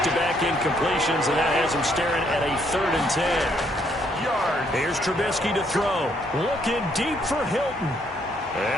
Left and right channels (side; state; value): both; normal; correlation 0.70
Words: incompletions, and that has him staring at a 3rd and 10. Here's Trubisky to throw. Looking deep for Hilton.